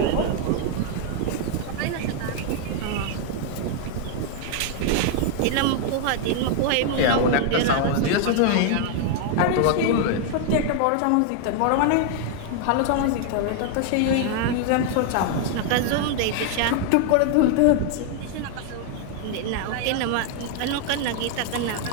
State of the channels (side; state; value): both; different; correlation 0.00